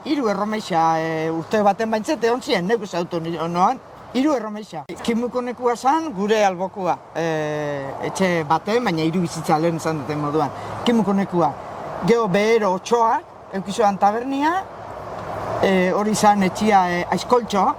3 erromeixa urte baten baintzet egon zian, neuk ezautu noan, 3 erromeixa. Kimukonekua zan, gure albokua, etxe baten, baina 3 bizitza lehen izan duten moduan. Kimukonekua, gero behero otxoak, eukizoan tabernia, hori zan etxia aizkoltxo,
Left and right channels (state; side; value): identical; both; correlation 1.00